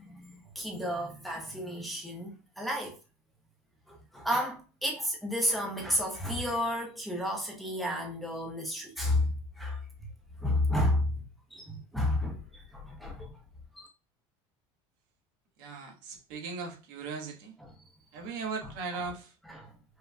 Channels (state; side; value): normal; both; correlation 0.56